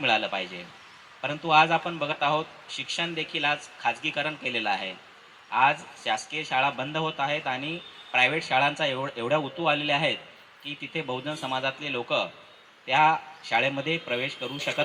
पाहिजे. परंतु आज आपण बघत आहोत शिक्षण देखील आज खाजगीकरण केलेलं आहे. आज शासकीय शाळा बंद होत आहेत आणि प्रायव्हेट शाळांचा एवढ्या उतू आलेले आहेत की तिथे बहुजन समाजातले लोक त्या शाळेमध्ये प्रवेश करू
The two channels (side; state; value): both; identical; correlation 1.00